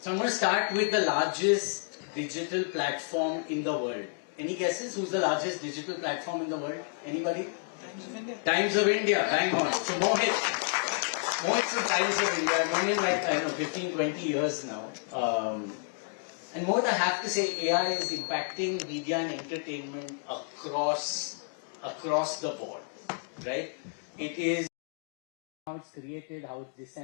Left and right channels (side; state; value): right; silent; 57 dB below the other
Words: I'm going to start with the largest digital platform in the world. Any guesses? Who's the largest digital platform in the world? Anybody? Times of India. Times of India, bang on. So Mohit's from Times of India. I've known him like, I don't know, 15, 20 years now. And Mohit, I have to say, AI is impacting media and entertainment across the board, right? It's impacting how it's created, how it's